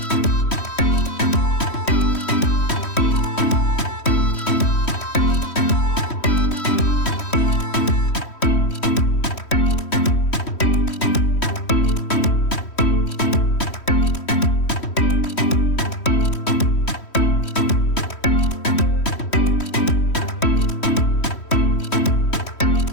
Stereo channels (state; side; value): late; right; 3.1 ms